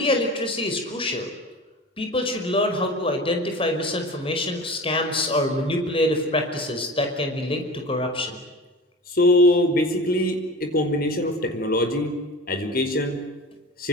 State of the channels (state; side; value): normal; both; correlation 0.35